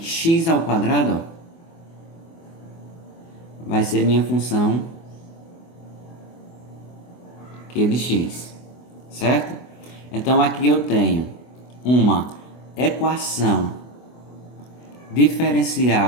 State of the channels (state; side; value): late; right; 24 ms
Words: ao quadrado, ó, vai ser minha função q de x, certo? Então aqui eu tenho uma equação